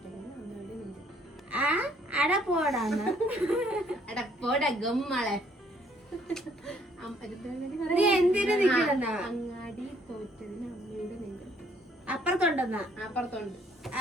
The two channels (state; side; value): normal; both; correlation 0.64